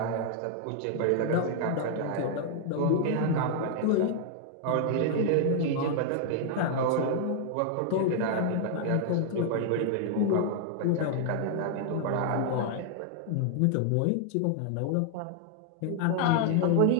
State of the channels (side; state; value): both; different; correlation 0.00